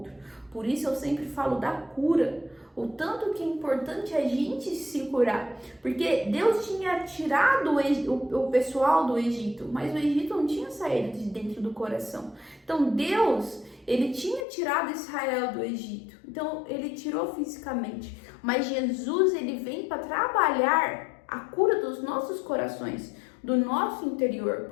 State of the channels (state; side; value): drops out; right; at 14.5 s